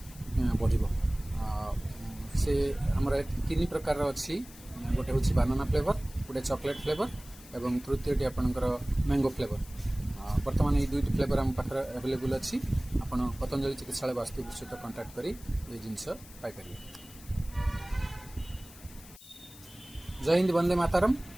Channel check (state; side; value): noise; left; hiss, 19 dB below the sound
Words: बढ़ से आमर तीन प्रकार अच्छी गोटे हूँ बानाना फ्लेवर गोटे चॉकलेट फ्लेवर एवं तृतीयटी आपंकर मैंगो फ्लेवर। बर्तमान ये दुईट फ्लेवर आम पाखे अवेलेबल अच्छी आप पतंजलि चिकित्सालय वास्तुपुर सहित कंटाक्ट कर जिनस पाइपर। जय हिंद वंदे मातरम।